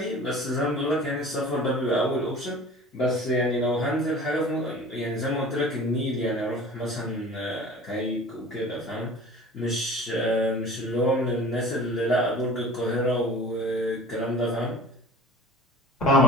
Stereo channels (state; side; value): normal; both; correlation 0.42